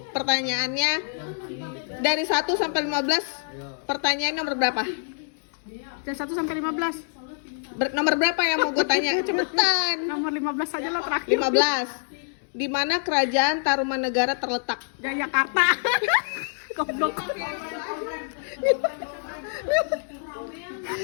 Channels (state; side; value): silent; right; digital silence